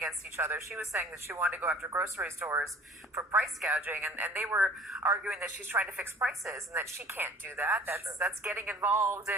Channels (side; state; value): both; normal; correlation 0.49